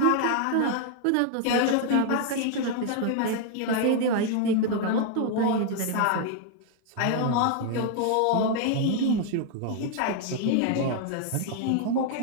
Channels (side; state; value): both; different; correlation 0.00